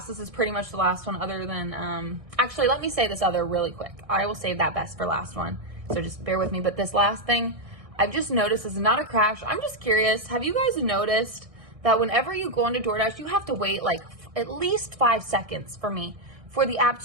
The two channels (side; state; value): left; late; 1.6 ms